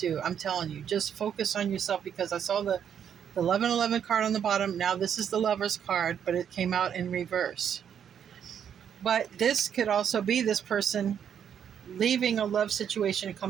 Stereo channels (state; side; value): quieter; left; 8.5 dB